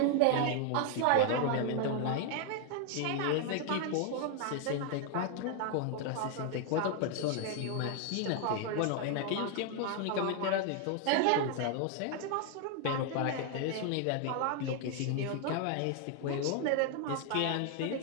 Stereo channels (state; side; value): different; both; correlation 0.00